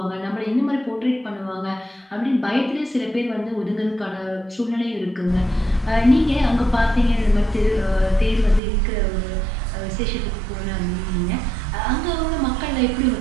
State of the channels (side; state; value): left; drops out; at 8.6 s